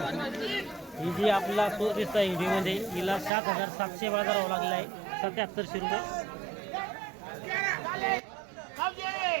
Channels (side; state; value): left; drops out; at 3.3 s